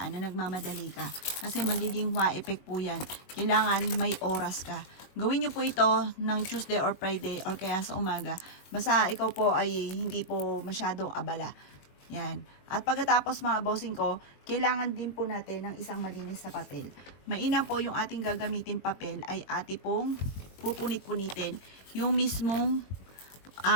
na nagmamadali ka. Kasi magiging hua effect po yan. Kailangan may oras ka. Gawin niyo po ito ng Tuesday or Friday or kaya sa umaga. Basta ikaw po ay hindi po masyadong abala. Yan. At pagkatapos mga bossing ko, kailangan din po natin ng isang malinis na papel. Mainam po yung ating gagamitin papel ay ati pong pupunit-punitin yung mismong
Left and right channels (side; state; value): right; late; 21 ms